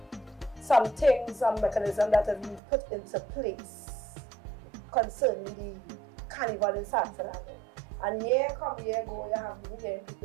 some things, some mechanism that have been put into place concerning the Carnival in San Fernando. And year go, you have been hearing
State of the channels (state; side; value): drops out; left; at 2.6 s